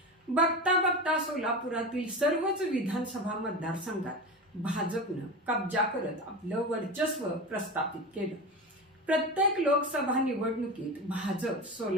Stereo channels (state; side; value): normal; both; correlation 0.25